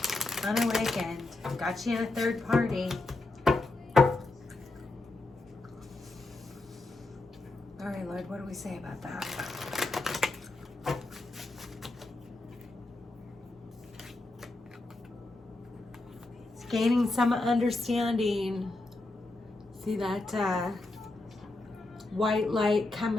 Unawakened. Got you in a third party. All right, Lord, what do we say about that? It's gaining some understanding. See that white light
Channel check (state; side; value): quieter; right; 3.0 dB